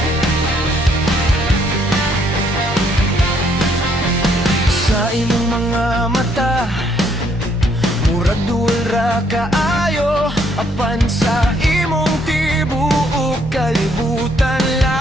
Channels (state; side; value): normal; both; correlation 0.69